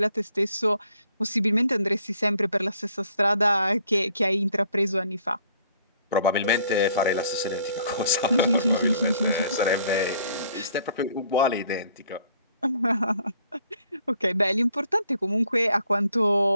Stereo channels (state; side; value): inverted; both; correlation -0.62